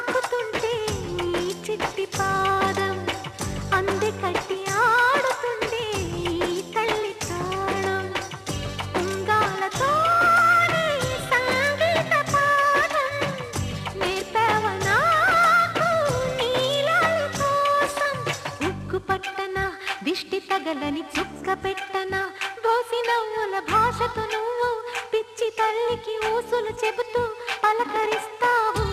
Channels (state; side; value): identical; both; correlation 1.00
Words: నీ చిట్టి పాదం అంది కట్టి ఆడుతుండే ఈ తల్లి తాళం ఉంగాలతోనే సంగీత పాఠం నేర్పవ నాకు నీలాల కోసం ఉక్కు పట్టన దిష్టి తగలని చుక్క పెట్టన బోసి నవ్వుల భాషతో నువ్వు పిచ్చి తల్లికి ఊసులు చెబుతూ పలకరిస్తావు